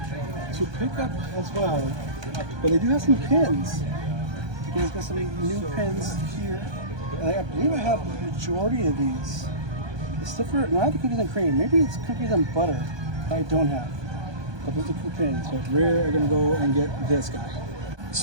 pick up as well. But they do have some pins. You guys got some new pins here. And I believe I have the majority of these. It's different. Not the cookies and cream. Maybe it's cookies and butter that I don't have. But those are cool pins. So we're gonna go and get this guy.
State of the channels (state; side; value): late; left; 1.2 ms